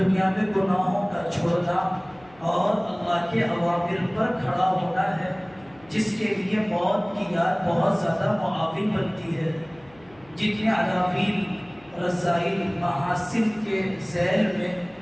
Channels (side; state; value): left; noise; hum, 27 dB below the sound